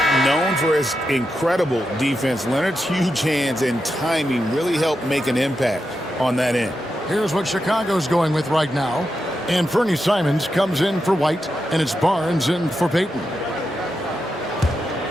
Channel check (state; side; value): normal; both; correlation 0.87